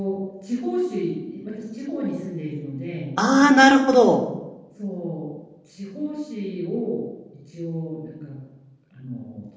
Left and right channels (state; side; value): identical; both; correlation 1.00